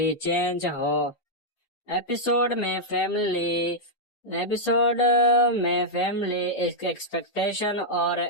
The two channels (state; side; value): late; right; 6.6 ms